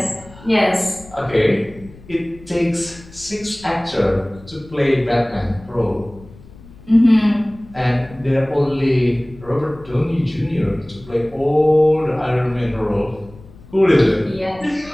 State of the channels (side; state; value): left; noise; rumble, 21 dB below the sound